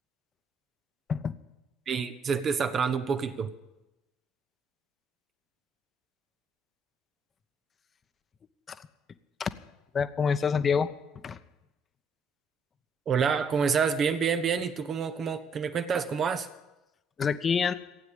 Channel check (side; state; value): both; normal; correlation 0.69